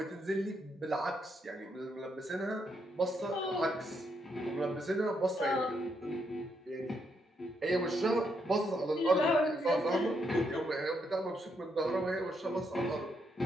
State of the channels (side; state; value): both; normal; correlation 0.77